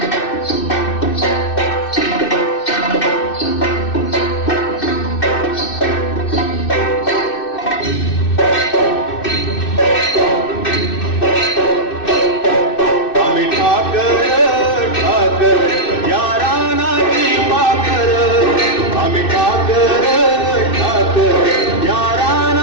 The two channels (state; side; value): late; right; 2.6 ms